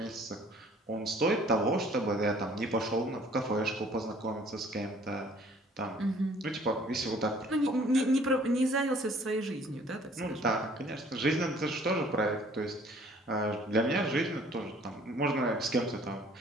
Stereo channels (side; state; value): both; normal; correlation 0.56